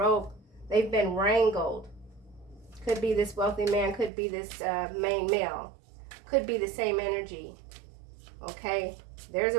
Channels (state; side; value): drops out; left; at 4.1 s